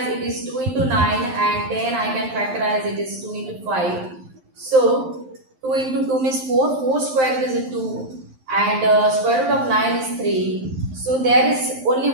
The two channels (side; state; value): left; late; 11 ms